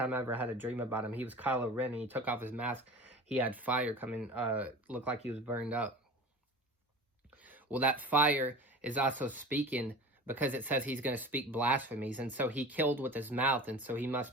I ever had a dream about him. He was Kylo Ren, and he took off his mask. He had fire coming, looked like he was burned up. Well, that fire is also speaking, because it says he's going to speak blasphemies. And so he killed with his mouth, and so he must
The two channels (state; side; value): normal; both; correlation 0.36